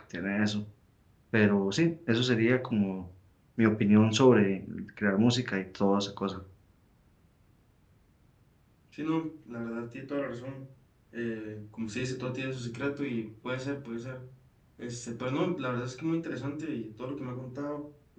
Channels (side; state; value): both; identical; correlation 1.00